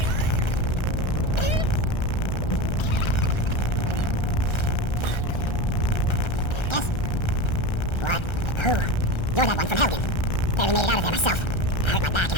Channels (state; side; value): late; right; 1.3 ms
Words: You're that one from Helgen. Barely made it out of there myself. I hurt my back